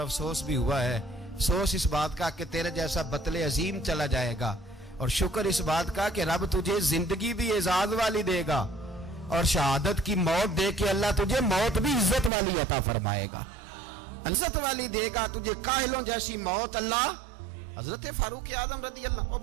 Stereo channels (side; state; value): left; drops out; at 12.3 s